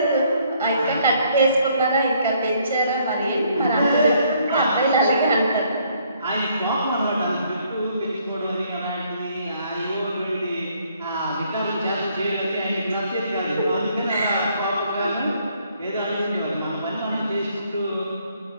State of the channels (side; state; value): both; inverted; correlation -0.67